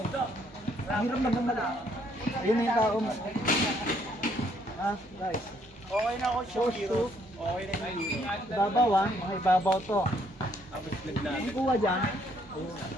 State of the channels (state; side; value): normal; both; correlation 0.68